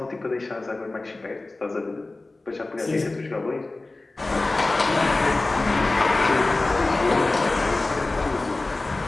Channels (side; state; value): right; quieter; 3.1 dB